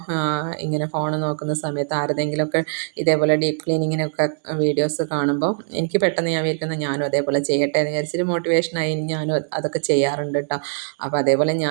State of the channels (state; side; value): silent; left; digital silence